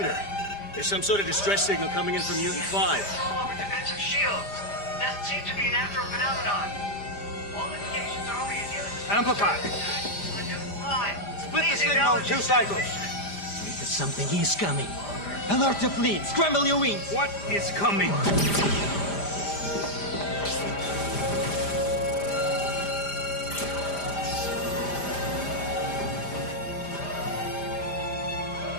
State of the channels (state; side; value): late; right; 5.0 ms